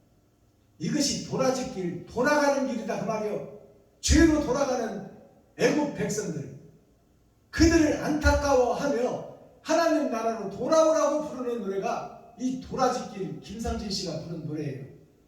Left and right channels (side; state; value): both; identical; correlation 1.00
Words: 이것이 도라지길, 돌아가는 길이다 그 말이요. 죄로 돌아가는 애국 백성들, 그들을 안타까워하며 하나님 나라로 돌아오라고 부르는 노래가 이 도라지길, 김상진 씨가 부른 노래예요.